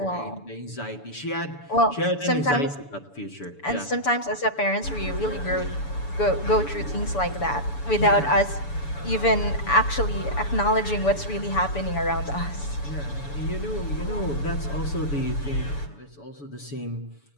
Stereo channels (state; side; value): late; right; 7.0 ms